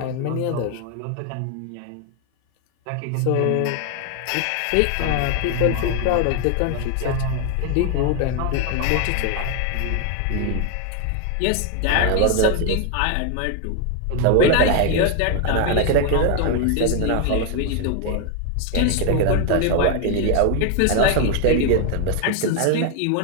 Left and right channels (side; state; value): both; different; correlation 0.01